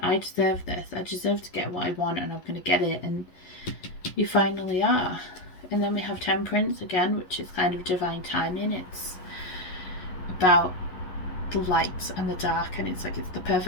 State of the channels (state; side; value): late; right; 11 ms